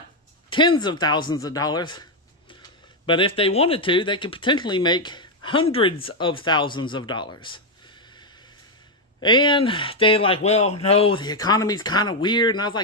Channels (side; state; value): both; normal; correlation 0.03